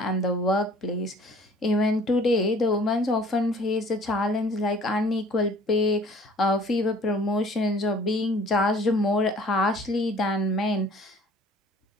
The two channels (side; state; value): both; normal; correlation 0.52